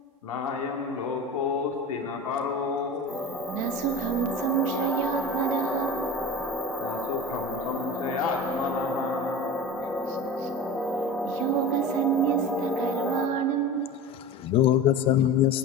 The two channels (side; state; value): both; normal; correlation 0.32